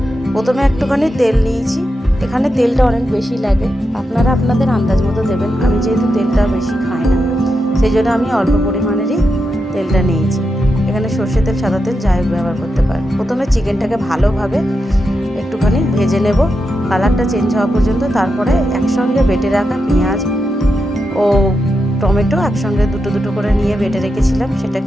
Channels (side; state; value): both; normal; correlation 0.87